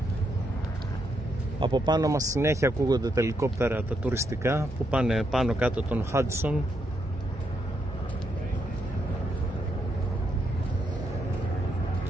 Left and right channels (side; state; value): both; normal; correlation 0.79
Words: Από πάνω μας συνέχεια ακούγονται τα ελικόπτερα τα τουριστικά που πάνε πάνω κάτω τον Hudson.